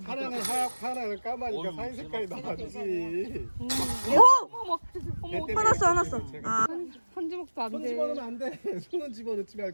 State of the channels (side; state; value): both; inverted; correlation -1.00